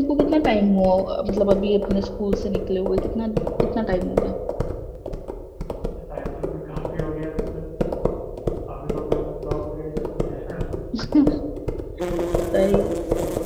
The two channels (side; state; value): both; identical; correlation 1.00